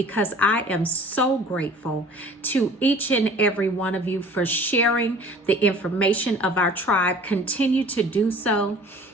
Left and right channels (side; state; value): both; normal; correlation 0.48